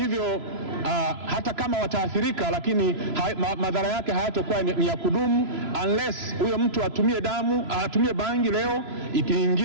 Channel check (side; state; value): left; late; 3.0 ms